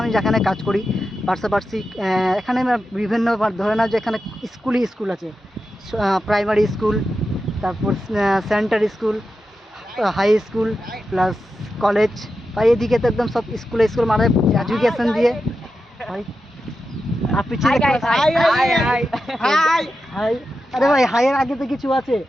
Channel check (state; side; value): normal; both; correlation 0.90